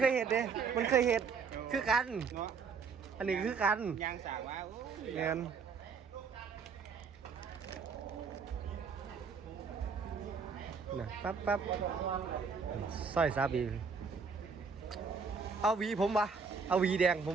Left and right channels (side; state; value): left; quieter; 5.4 dB